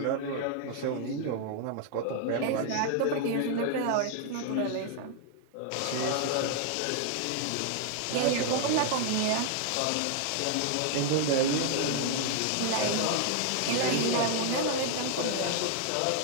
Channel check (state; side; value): different; both; correlation 0.00